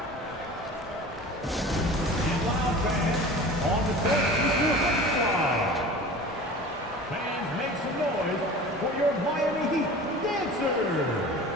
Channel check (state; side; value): normal; both; correlation 0.39